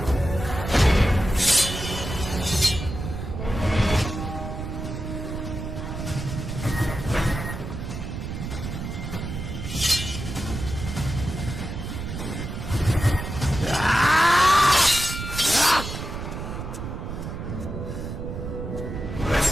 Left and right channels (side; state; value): right; noise; rumble, 6 dB below the sound